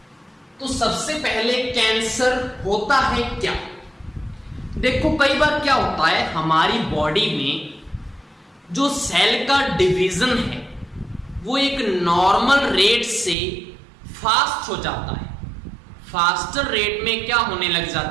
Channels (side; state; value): left; drops out; at 13.4 s